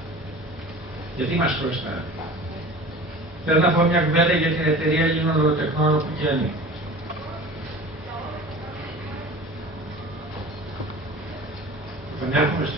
Γιατί μας χρωστάνε. Θέλω να πω μια κουβέντα για την εταιρεία Ελλήνων Λογοτεχνών που και ανήκω. Επανέρχομαι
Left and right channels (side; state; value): both; normal; correlation 0.39